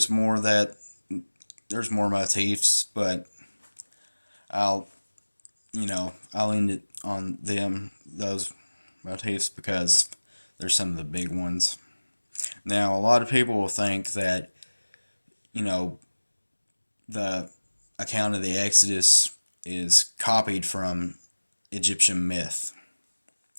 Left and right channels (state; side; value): inverted; both; correlation -1.00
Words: more motifs, but I'll end it on those motifs, because they're some of the big ones. Now, a lot of people will think that, the account of the Exodus is copied from Egyptian myth.